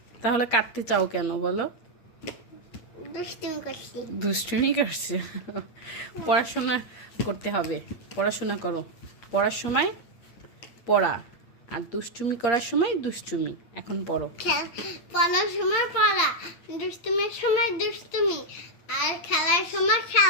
তাহলে কাটতে চাও কেন বলো? দুষ্টুমি করছি। দুষ্টুমি করছে। পড়াশোনা করতে হবে, পড়াশোনা করো। পড়ার সময় পড়া, আর দুষ্টুমি করার সময় দুষ্টুমি। এখন পড়ো। পড়ার সময় পড়া, দুষ্টুমির সময় দুষ্টুমি, আর খেলার সময়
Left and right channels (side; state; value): right; late; 8.6 ms